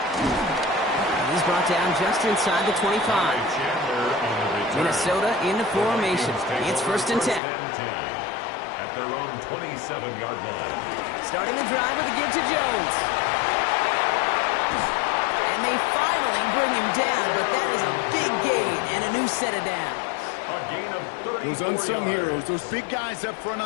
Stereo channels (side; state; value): right; drops out; at 7.4 s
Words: He's brought down just inside the 25. Minnesota in the formation. It's 1st and 10. At their own 27-yard line. Starting the drive with a give to Jones. And they finally bring him down, but that is a big gain and a new set of downs. A gain of 34 Those unsung yards. heroes, those big guys up front